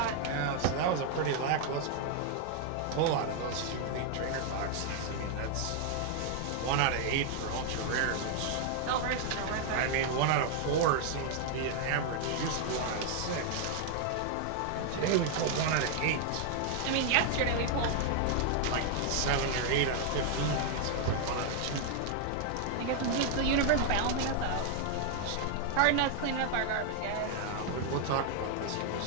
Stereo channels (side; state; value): both; different; correlation 0.00